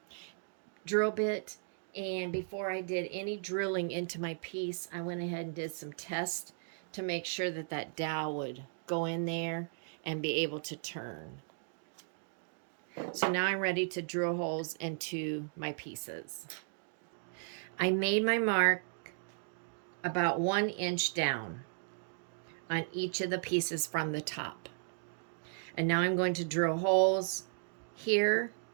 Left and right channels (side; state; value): left; silent; digital silence